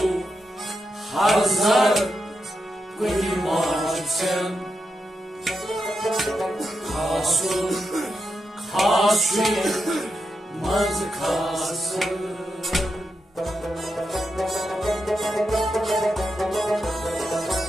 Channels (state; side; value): normal; both; correlation 0.86